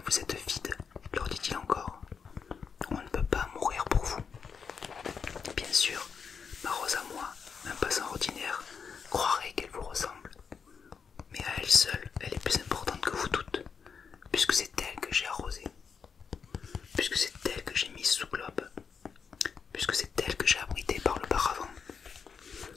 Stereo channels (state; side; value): quieter; right; 6.1 dB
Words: vous êtes vide, leur dit-il encore. On ne peut pas mourir pour vous. Bien sûr, ma rose à moi, un passant ordinaire, croirait qu'elle vous ressemble. Mais à elle seule, elle est plus importante que vous toutes, puisque c'est elle que j'ai arrosée, puisque c'est elle que j'ai mise sous globe, puisque c'est elle que j'ai abritée par le paravent,